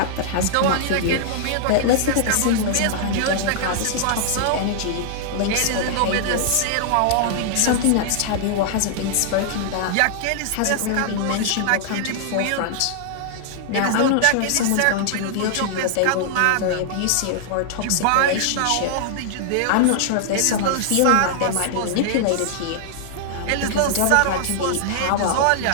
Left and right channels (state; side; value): different; both; correlation -0.01